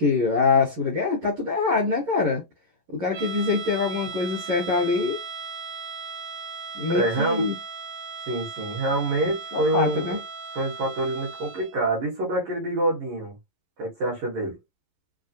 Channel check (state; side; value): late; left; 11 ms